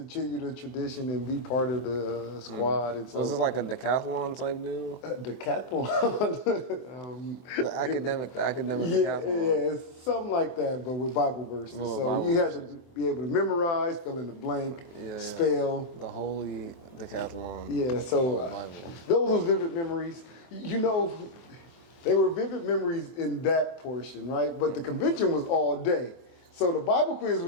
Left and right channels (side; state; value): right; late; 24 ms